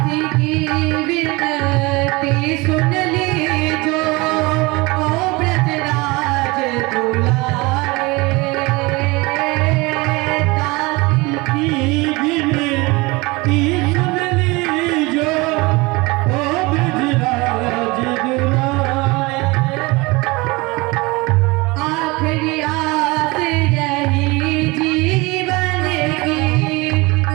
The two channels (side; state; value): left; quieter; 24.2 dB